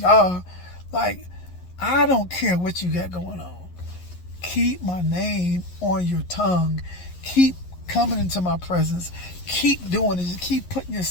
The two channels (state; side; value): late; right; 11 ms